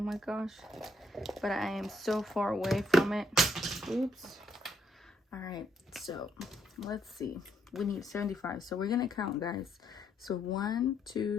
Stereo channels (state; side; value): normal; both; correlation 0.73